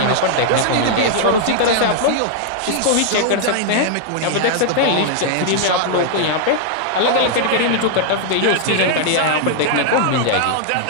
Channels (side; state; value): both; different; correlation -0.01